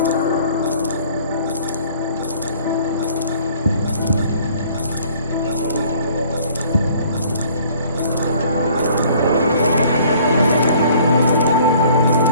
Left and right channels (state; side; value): inverted; both; correlation -0.55